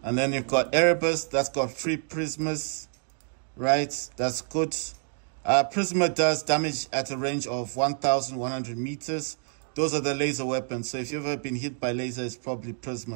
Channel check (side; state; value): left; silent; 60 dB below the other